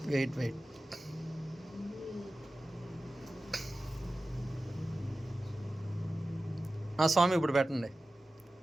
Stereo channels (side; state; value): both; normal; correlation 0.95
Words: వెయిట్ స్వామి ఇప్పుడు పెట్టండి.